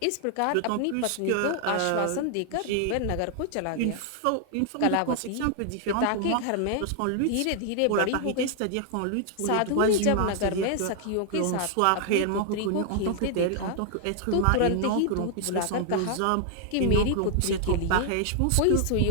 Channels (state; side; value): different; both; correlation 0.00